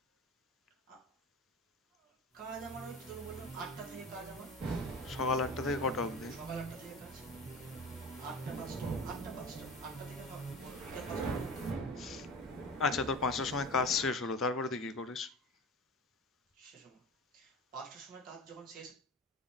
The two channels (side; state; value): both; normal; correlation 0.33